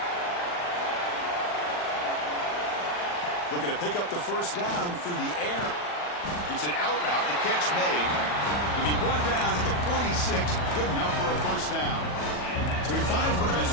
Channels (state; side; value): late; right; 40 ms